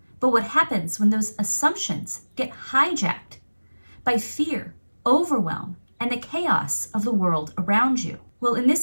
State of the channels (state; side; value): inverted; both; correlation -1.00